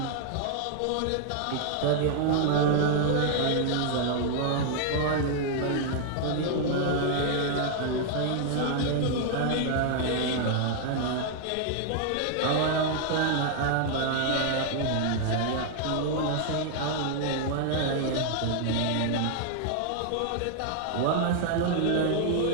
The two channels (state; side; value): different; both; correlation 0.00